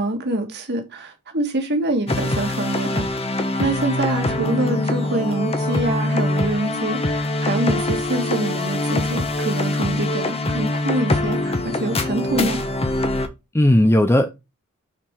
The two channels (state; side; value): normal; both; correlation 0.60